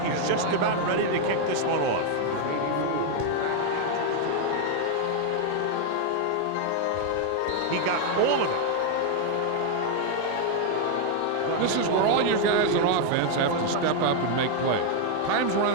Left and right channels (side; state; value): both; different; correlation 0.00